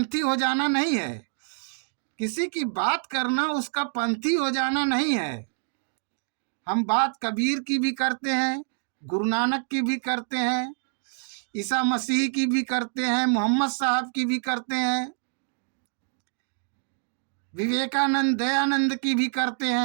हो जाना नहीं है। किसी की बात करना उसका पंथी हो जाना नहीं है। हम बात कबीर की भी करते हैं, गुरु नानक की भी करते हैं, ईसा मसीह की भी करते हैं, मोहम्मद साहब की भी करते हैं, विवेकानंद, दयानंद की भी करते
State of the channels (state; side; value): silent; left; digital silence